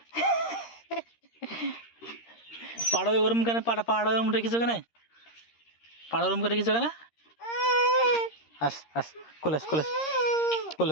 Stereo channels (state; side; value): late; right; 13 ms